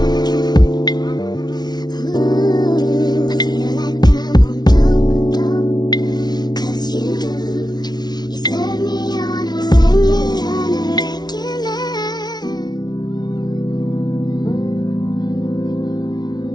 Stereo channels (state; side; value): late; right; 0.19 ms